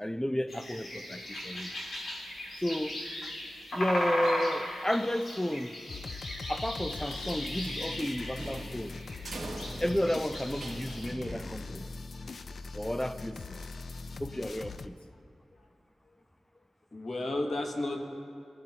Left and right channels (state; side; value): normal; both; correlation 0.96